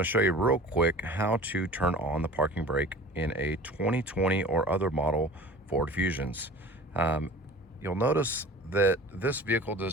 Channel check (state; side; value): normal; both; correlation 0.41